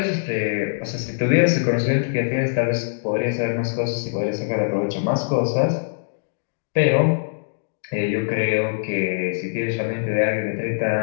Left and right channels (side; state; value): right; silent; digital silence